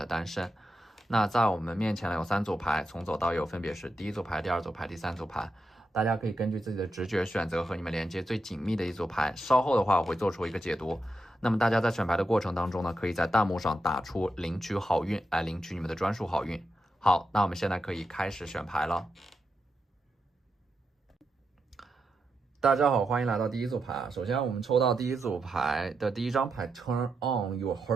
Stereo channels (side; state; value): both; normal; correlation 0.86